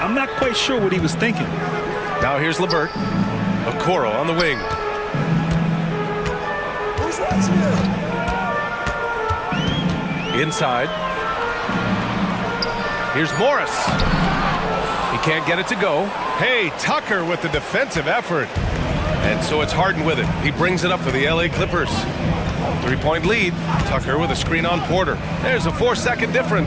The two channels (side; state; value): both; identical; correlation 1.00